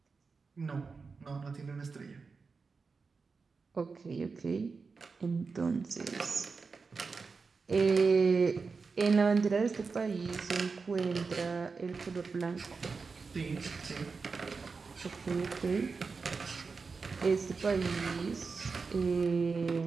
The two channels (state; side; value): quieter; left; 4.7 dB